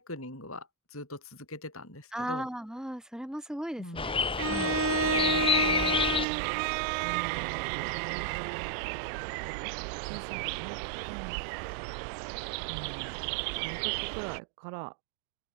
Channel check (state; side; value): drops out; left; at 6.2 s